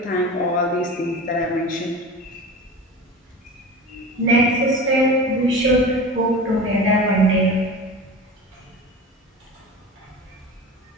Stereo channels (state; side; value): normal; both; correlation 0.32